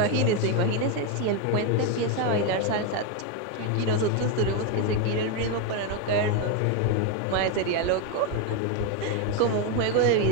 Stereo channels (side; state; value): both; different; correlation 0.02